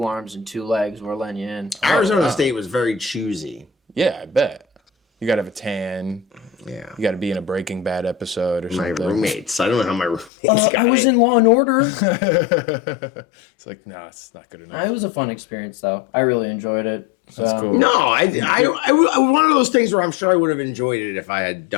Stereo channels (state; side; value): drops out; right; at 10.3 s